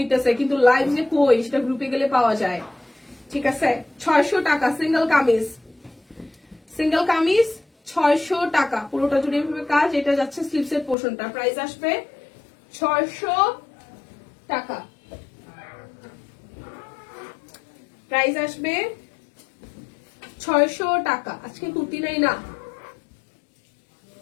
কিন্তু লাইভ যে কই সেটা গ্রুপে গেলে পাওয়া যায়। ঠিক আছে, 600 টাকা সিঙ্গেল কামিজ, সিঙ্গেল কামিজ 600 টাকা, পুরোটা জুড়ে এভাবে কাজ। এটা যাচ্ছে স্লিপসের পোর্শনটা, প্রাইস আসবে 600 টাকা, প্রাইস আসবে 600 টাকা। আজকে কুর্তি নাই না,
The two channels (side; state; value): right; drops out; at 11.0 s